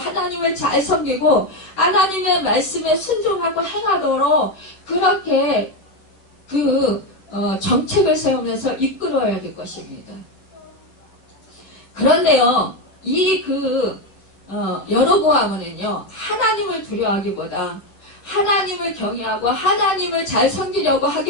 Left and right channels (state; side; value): late; right; 10 ms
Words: 하나님을 잘 섬기고 하나님의 말씀에 순종하고 행하도록 그렇게 정책을 세우면서 이끌어야 될 것입니다. 그런데요, 여로보암은요, 하나님을 두려워하기보다 하나님을 경외하고 하나님을 잘 섬기려고